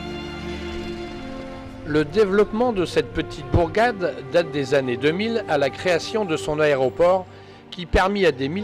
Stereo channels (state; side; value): identical; both; correlation 1.00